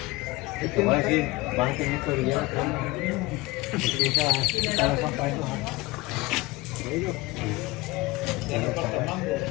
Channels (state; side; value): quieter; right; 21.3 dB